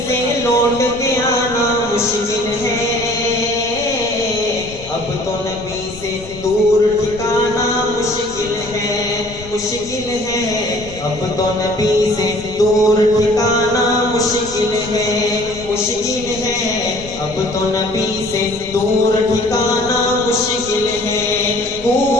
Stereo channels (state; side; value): noise; left; rumble, 16 dB below the sound